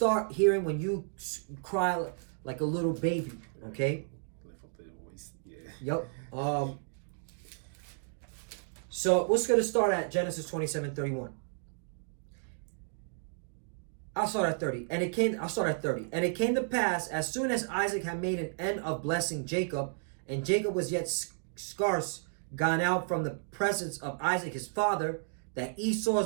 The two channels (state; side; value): silent; left; digital silence